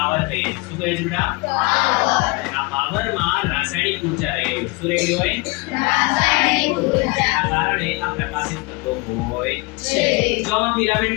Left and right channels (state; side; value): quieter; right; 26.7 dB